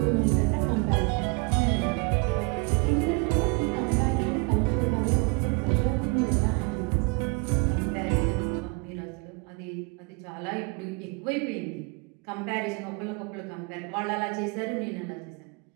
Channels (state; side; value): quieter; left; 31.2 dB